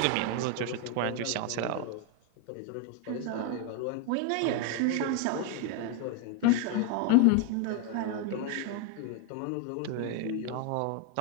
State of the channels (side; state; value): both; different; correlation 0.01